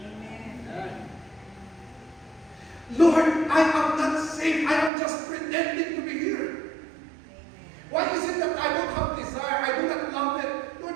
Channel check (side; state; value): left; drops out; at 4.9 s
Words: Amen. Lord, I am not saved. I am just pretending to be here. Amen. Why is it that I don't have desire? I do not love it. Lord,